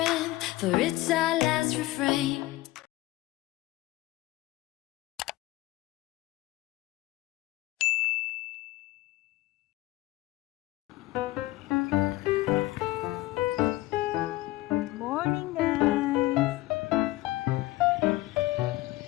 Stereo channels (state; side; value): quieter; right; 18.2 dB